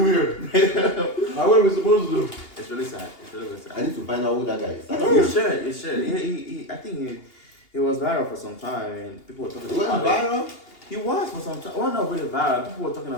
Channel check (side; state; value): right; late; 2.8 ms